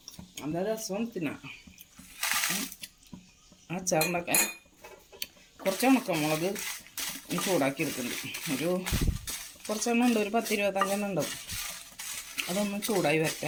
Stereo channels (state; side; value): identical; both; correlation 1.00